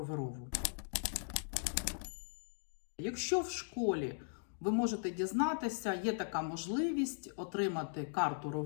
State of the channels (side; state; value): right; silent; digital silence